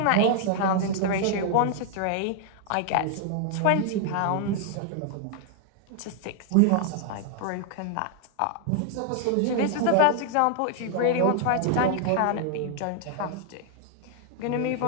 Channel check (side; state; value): both; different; correlation 0.00